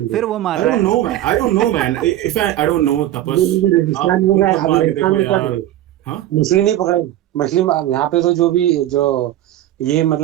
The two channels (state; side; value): quieter; left; 13.5 dB